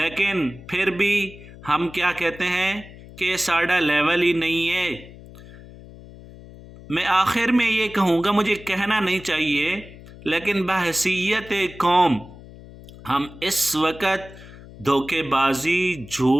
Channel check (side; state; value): left; noise; hum, 18 dB below the sound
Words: پھر بھی ہم کیا کہتے ہیں کہ ساڑھا لیول ہی نہیں ہے. میں آخر میں یہ کہوں گا، مجھے کہنا نہیں چاہیے، لیکن بحیثیت قوم ہم اس وقت دھوکے بازی،